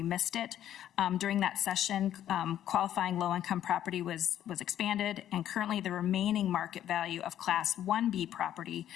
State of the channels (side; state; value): right; quieter; 11.3 dB